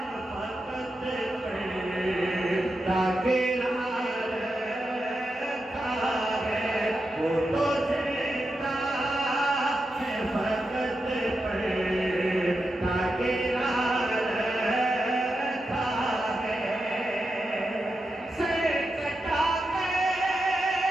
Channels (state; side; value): normal; both; correlation 0.88